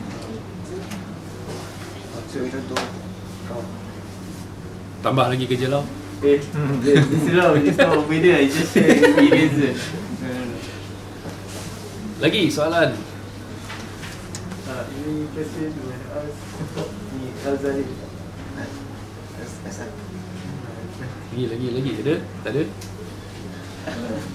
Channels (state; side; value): identical; both; correlation 1.00